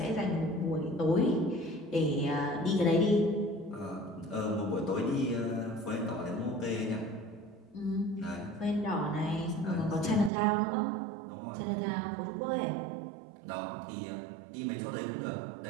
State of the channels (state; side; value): drops out; left; at 10.3 s